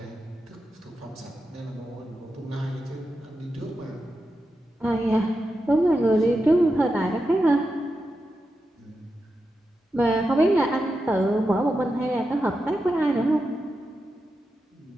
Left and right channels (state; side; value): normal; both; correlation 0.89